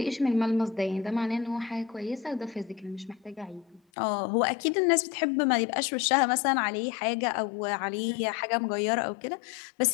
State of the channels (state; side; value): drops out; right; at 3.8 s